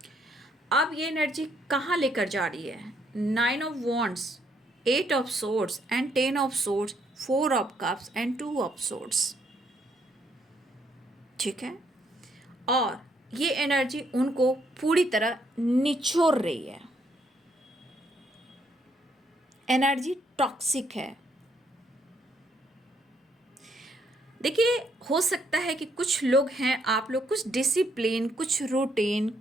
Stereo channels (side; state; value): both; normal; correlation 0.72